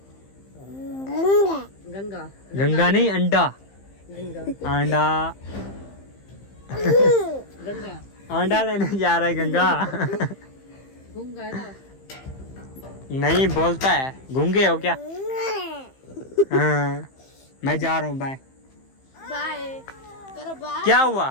गंगा गंगा नहीं, अंडा। गंगा अंडा गंगा अंडा लेने जा रहा है गंगा। गंगा है ना? नहीं बोलता है। गूंगे हो क्या? हाँ मैं जा रहा हूँ, बाय। बाय करो, बाय क्या हुआ?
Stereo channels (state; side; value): late; right; 15 ms